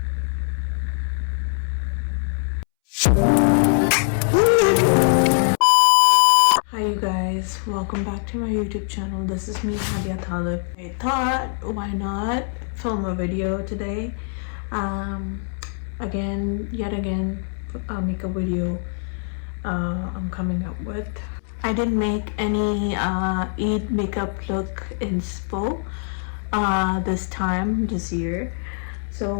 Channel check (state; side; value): silent; right; 63 dB below the other